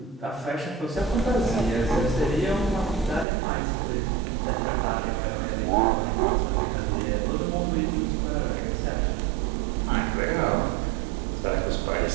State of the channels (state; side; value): drops out; left; at 3.2 s